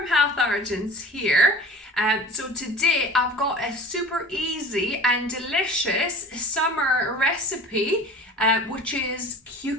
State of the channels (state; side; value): normal; both; correlation 0.40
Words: Health Origins here. So today I've got a super easy and delicious summer recipe which is